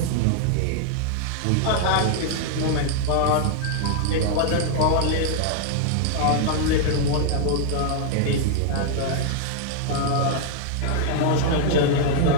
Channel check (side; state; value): both; different; correlation -0.01